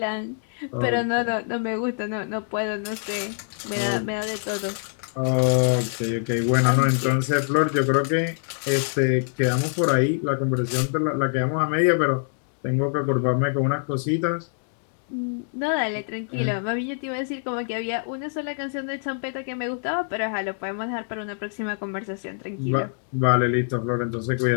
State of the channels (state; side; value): silent; right; digital silence